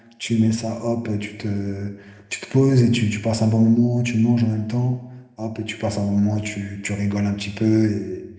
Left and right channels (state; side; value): identical; both; correlation 1.00